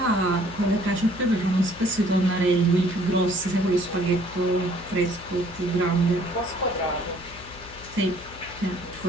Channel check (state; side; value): noise; left; hum, 18 dB below the sound